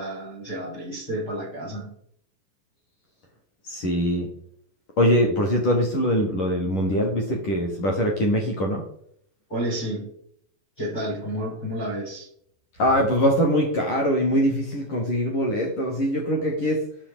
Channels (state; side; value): late; right; 10 ms